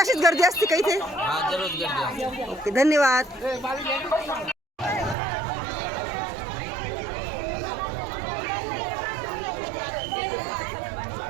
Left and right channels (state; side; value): drops out; left; at 5.2 s